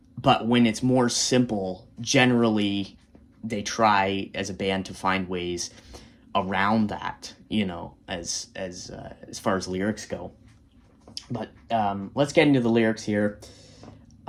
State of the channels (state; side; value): identical; both; correlation 1.00